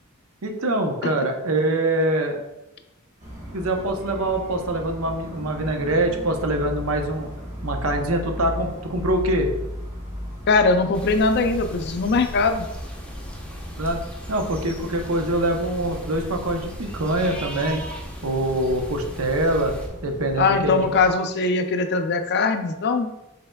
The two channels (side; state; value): both; normal; correlation 0.05